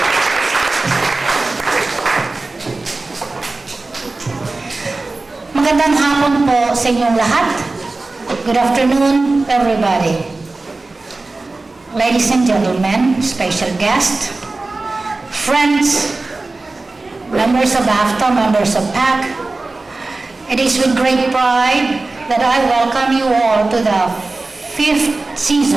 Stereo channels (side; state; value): left; quieter; 3.3 dB